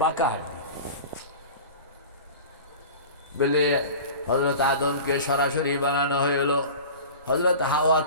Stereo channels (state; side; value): inverted; both; correlation -0.35